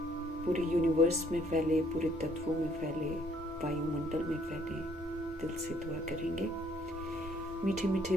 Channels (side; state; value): both; normal; correlation 0.64